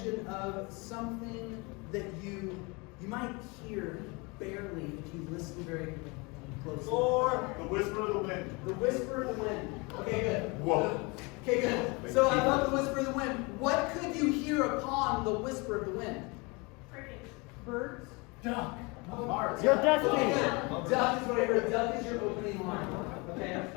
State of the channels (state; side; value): quieter; right; 27.8 dB